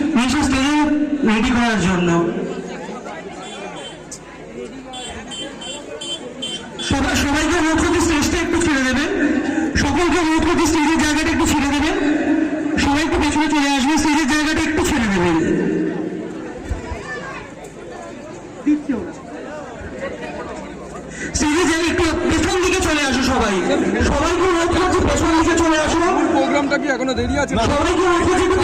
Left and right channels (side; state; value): both; identical; correlation 1.00